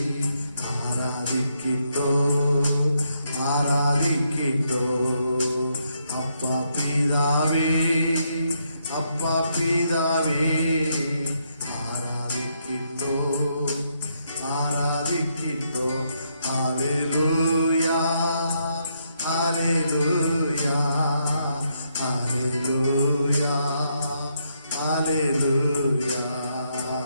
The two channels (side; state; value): both; inverted; correlation -0.77